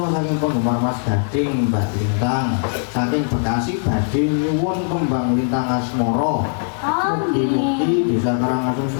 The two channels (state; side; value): silent; right; digital silence